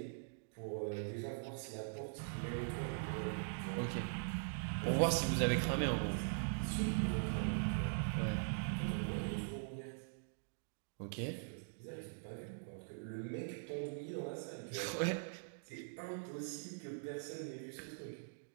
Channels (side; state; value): left; silent; digital silence